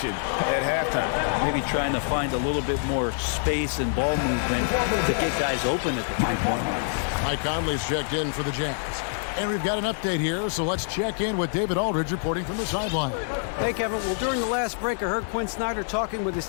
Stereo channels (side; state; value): right; silent; 61 dB below the other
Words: at halftime. Maybe trying to find a little bit more space and ball movement to get guys open at the 3-point line. Mike Conley's checked in for the Jazz. And we've got an update here, so let's check in with David Aldridge reporting from the sideline. Hey, Kevin. Well, during the last break, I heard Quinn Snyder talking with his